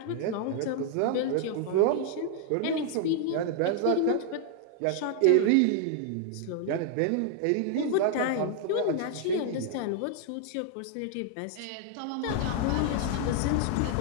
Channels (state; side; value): different; both; correlation 0.00